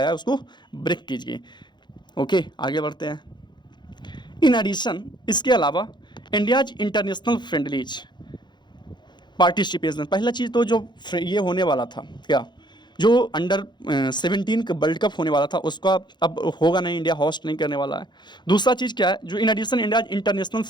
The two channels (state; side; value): late; right; 0.21 ms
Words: है, उसको ब्रेक कीजिए। ओके, आगे बढ़ते हैं। इन एडिशन, इसके अलावा इंडियाज इंटरनेशनल फ्रेंडलीज पार्टिसिपेशन, पहला चीज़ तो जो ये होने वाला था, क्या जो अंडर-17 का वर्ल्ड कप होने वाला था, उसका अब होगा नहीं, इंडिया होस्ट नहीं करने वाला है। दूसरा चीज़ क्या है, जो in addition India international